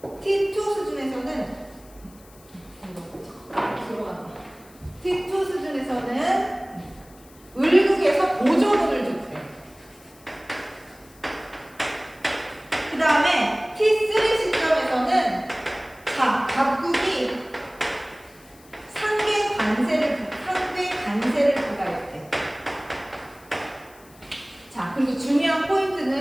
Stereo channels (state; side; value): noise; left; hiss, 25 dB below the sound